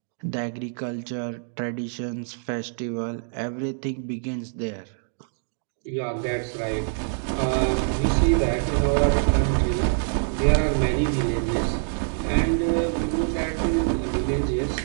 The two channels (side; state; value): left; silent; digital silence